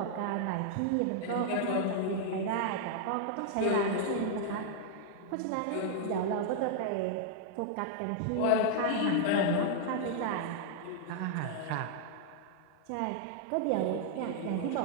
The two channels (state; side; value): different; both; correlation -0.01